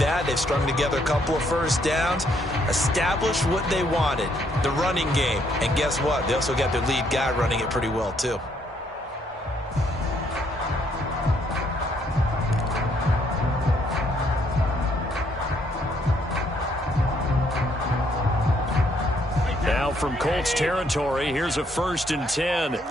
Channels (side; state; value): both; normal; correlation 0.70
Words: They've strung together a couple of 1st downs, established what they wanted, the running game. And guess what? They also got their lead guy running it pretty well, too. Now from Colts territory, here's a 1st and 10